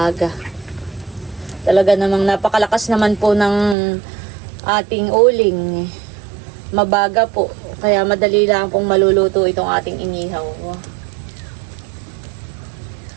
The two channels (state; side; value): drops out; left; at 3.8 s